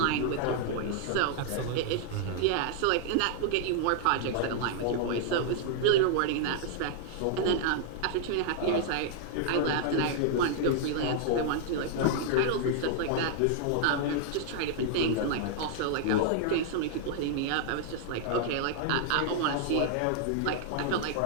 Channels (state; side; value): different; both; correlation -0.01